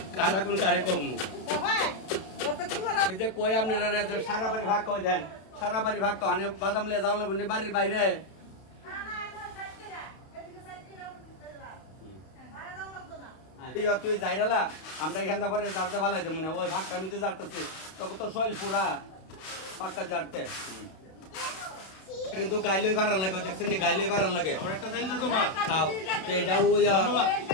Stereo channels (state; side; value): late; right; 31 ms